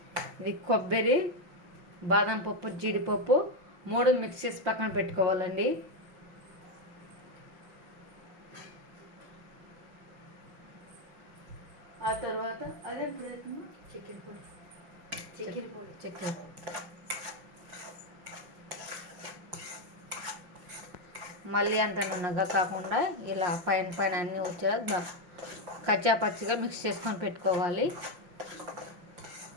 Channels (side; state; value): left; late; 5.7 ms